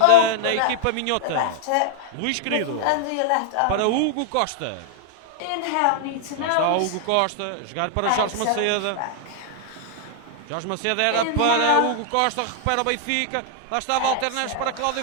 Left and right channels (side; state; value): both; different; correlation 0.00